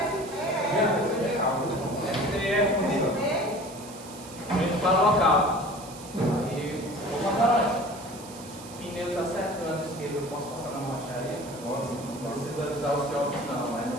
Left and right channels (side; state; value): right; noise; hiss, 16 dB below the sound